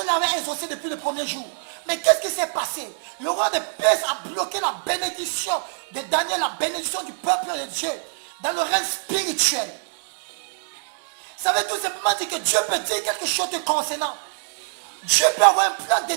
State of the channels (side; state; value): left; silent; 62 dB below the other